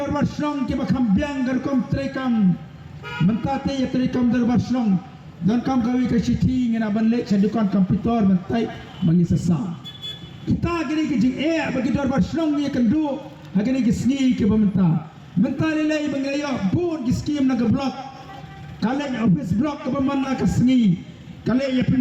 bar snong ki bakham biang gar kom trekam. Mentate ya trekam dor bar snong. Dan kam kawi ke siti ngena banlek sadukan komputer mentai mengisasa. Kita gini ke jing bagi dor bar snong ni kendu. Hagini ke sni ke bamenta. Menta lelai bangaya bun ki skim na ke blok. Kale office blok ke bamana ke sni. Kale ya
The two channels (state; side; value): identical; both; correlation 1.00